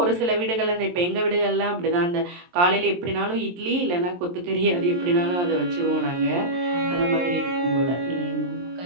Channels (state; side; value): late; left; 23 ms